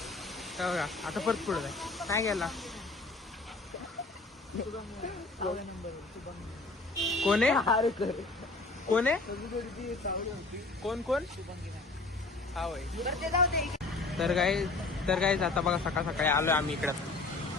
बघा. आता परत पुढे जाय काय गेला. कोण आहे कोण आहे कोण हा होय. तर काय आता बघा सकाळी आलोय आम्ही इकडं.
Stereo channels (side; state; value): right; quieter; 3.4 dB